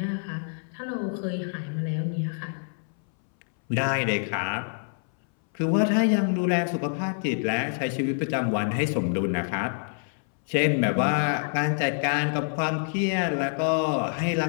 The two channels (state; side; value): silent; right; 61 dB below the other